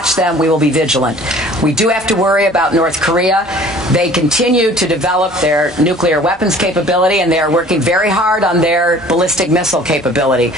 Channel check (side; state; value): both; normal; correlation 0.49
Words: them. We will be vigilant. We do have to worry about North Korea. They continue to develop their nuclear weapons capability, and they are working very hard on their ballistic missile capability.